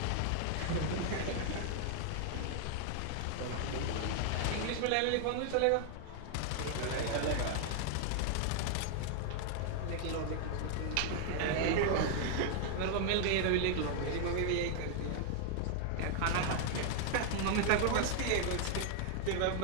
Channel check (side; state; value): both; different; correlation 0.00